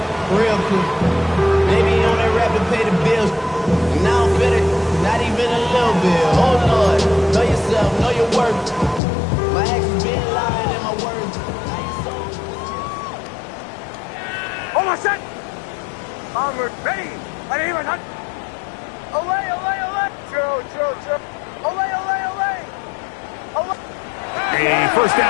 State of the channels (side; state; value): right; drops out; at 9.0 s